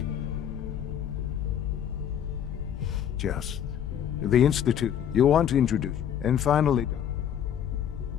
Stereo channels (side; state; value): right; quieter; 9.5 dB